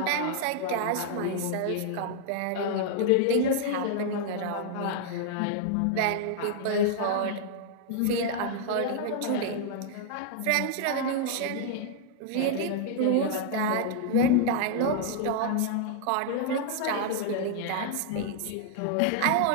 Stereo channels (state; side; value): different; both; correlation -0.01